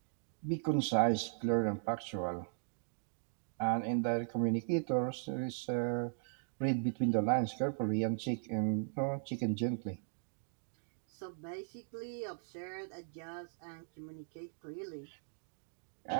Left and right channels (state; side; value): silent; left; digital silence